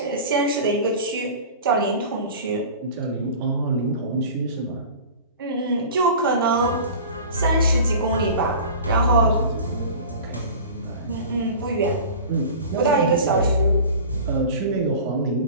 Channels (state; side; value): inverted; both; correlation -0.38